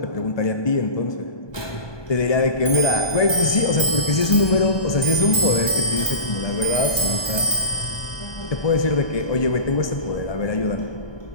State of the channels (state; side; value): late; right; 1.2 ms